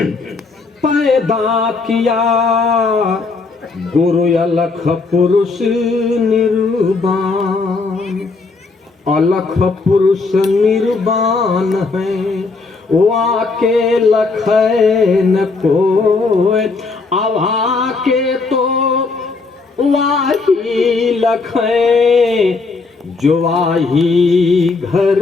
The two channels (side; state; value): right; quieter; 4.0 dB